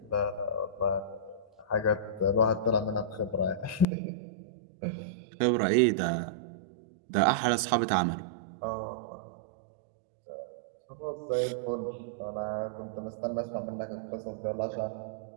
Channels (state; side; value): drops out; left; at 3.9 s